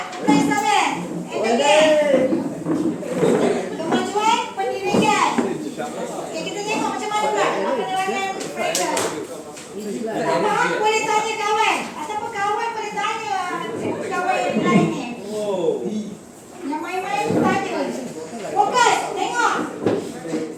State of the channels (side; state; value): both; identical; correlation 1.00